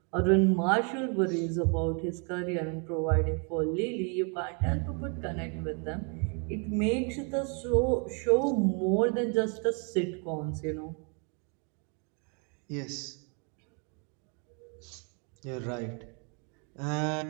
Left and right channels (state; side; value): quieter; left; 37.0 dB